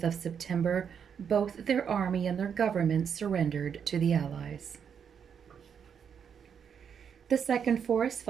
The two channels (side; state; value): left; quieter; 7.4 dB